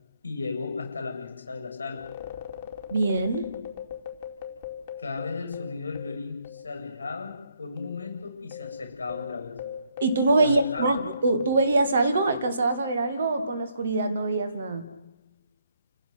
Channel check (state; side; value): inverted; both; correlation -0.72